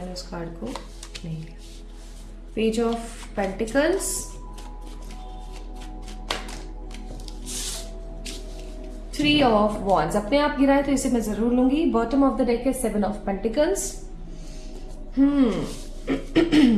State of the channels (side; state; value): both; identical; correlation 1.00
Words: उस कार्ड को नहीं लिया। Page of pentacles, three of wands. अपने आप गिरा है तो इसे मैं जरूर लूंगी। बॉटम ऑफ द डेक है 7 of pentacles.